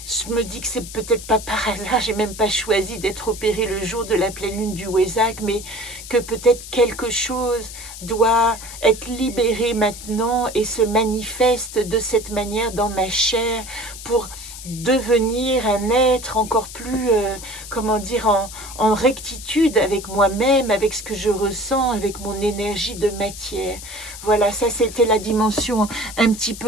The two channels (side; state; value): left; noise; hiss, 13 dB below the sound